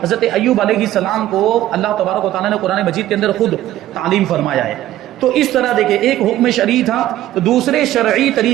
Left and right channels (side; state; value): left; quieter; 13.8 dB